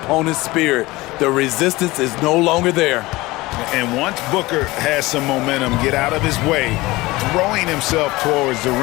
spirit. The resistance is no longer there. And once Booker has some momentum, get out of his way, throwing himself towards the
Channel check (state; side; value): quieter; right; 20.5 dB